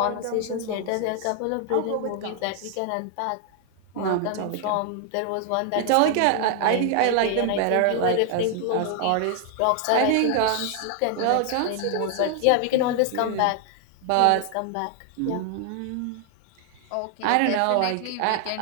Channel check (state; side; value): different; both; correlation 0.00